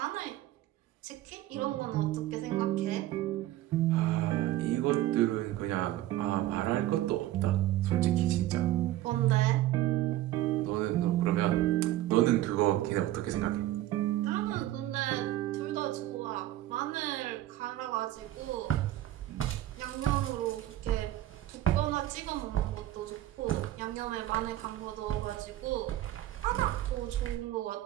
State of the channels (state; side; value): quieter; left; 14.5 dB